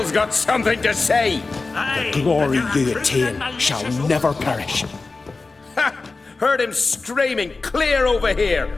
got something to say. The glory you attain shall never perish. Ha! Heard him screaming clear over here.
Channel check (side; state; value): right; quieter; 3.8 dB